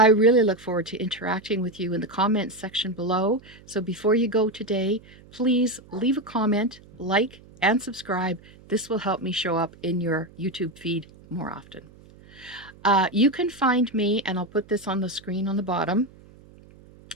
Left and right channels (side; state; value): right; noise; hum, 23 dB below the sound